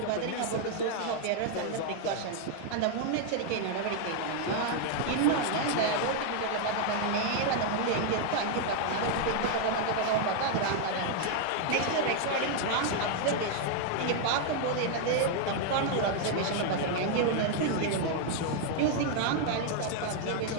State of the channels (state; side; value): different; both; correlation 0.00